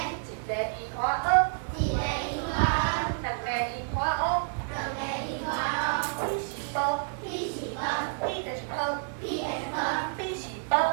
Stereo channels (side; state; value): left; silent; digital silence